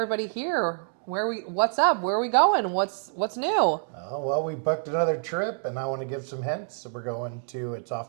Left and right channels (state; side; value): silent; left; 60 dB below the other